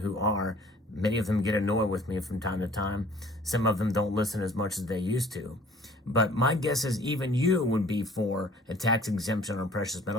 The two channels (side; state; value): both; normal; correlation 0.52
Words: are. Many of them get annoyed with me from time to time. Some of them don't listen as much as they used to. But my guess is even you would be for a tax exemption on precious